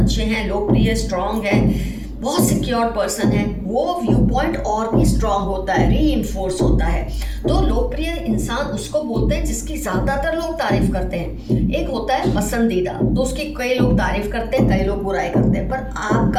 हैं, लोकप्रिय, स्ट्रांग हैं, बहुत सिक्योर पर्सन है, वो व्यू पॉइंट और भी स्ट्रांग होता है, रीइंफोर्स होता है। तो लोकप्रिय इंसान उसको बोलते हैं जिसकी ज़्यादातर लोग तारीफ करते हैं। एक होता है पसंदीदा, तो उसकी कई लोग तारीफ करते हैं, कई लोग बुराई करते हैं, पर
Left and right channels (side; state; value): both; identical; correlation 1.00